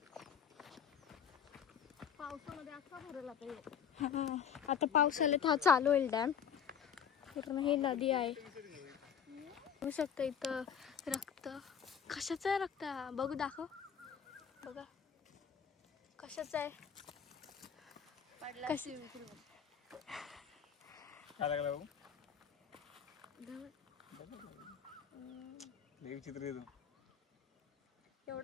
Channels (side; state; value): right; quieter; 7.9 dB